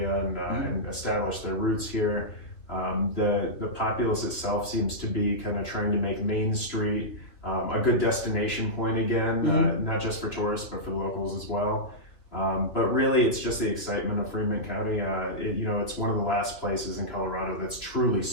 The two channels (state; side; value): late; right; 3.2 ms